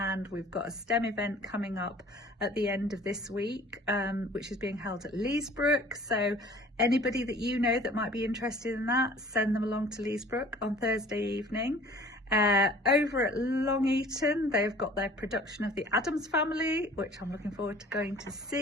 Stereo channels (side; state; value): both; normal; correlation 0.49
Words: we've got a STEM event coming up at the end of this week, which is being held at Leesbrook. So anybody that you know that might be interested in that, send them along to Leesbrook on Thursday evening. Over at Long Eaton, they've got their production of the Addams Family, which I'm looking forward to going to